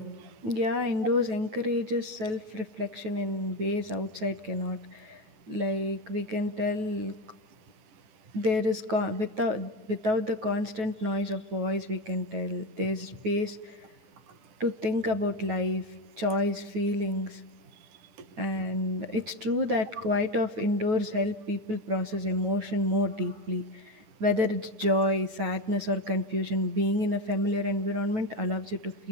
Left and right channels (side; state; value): left; late; 9.3 ms